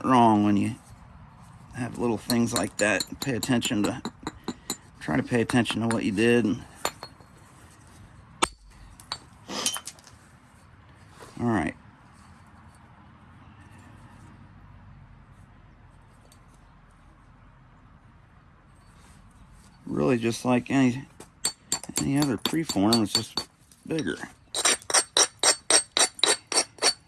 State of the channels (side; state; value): both; identical; correlation 1.00